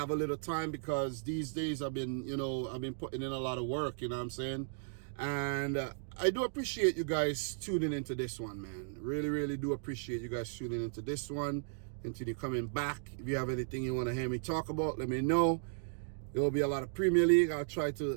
a little time, because these days I've been, you know, I've been putting in a lot of work, you know what I'm saying? And I do appreciate you guys tuning into this one, man. Really, really do appreciate you guys tuning into this one. Continue coming back. If you have anything you want to hear me talk about, let me know. There will be a lot of Premier League. I'll try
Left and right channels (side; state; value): left; silent; digital silence